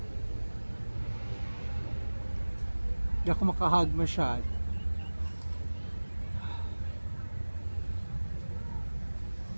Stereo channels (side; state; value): both; inverted; correlation -1.00